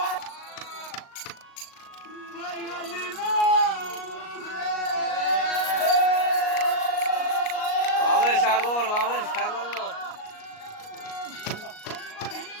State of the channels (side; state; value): right; late; 38 ms